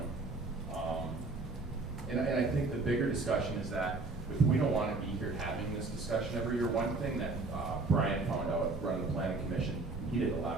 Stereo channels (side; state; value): left; quieter; 3.5 dB